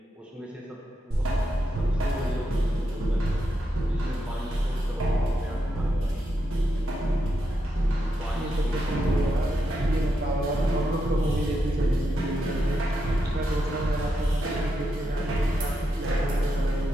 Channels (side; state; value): both; normal; correlation 0.84